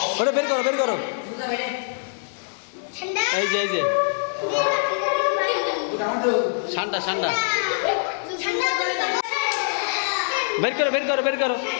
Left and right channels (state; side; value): silent; right; 62 dB below the other